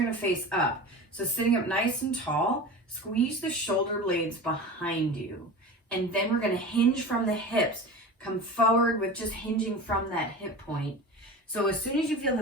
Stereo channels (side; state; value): both; normal; correlation 0.32